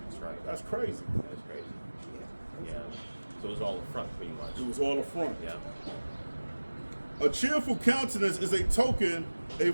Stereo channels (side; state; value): both; inverted; correlation -1.00